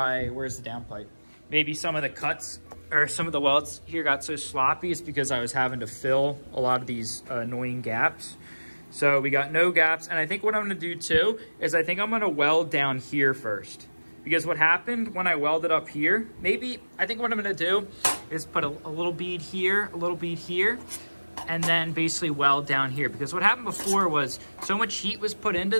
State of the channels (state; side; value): inverted; both; correlation -1.00